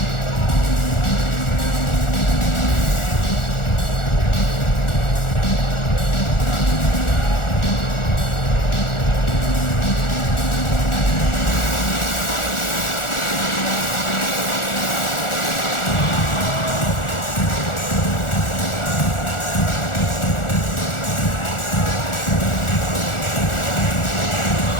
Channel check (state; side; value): late; right; 1.4 ms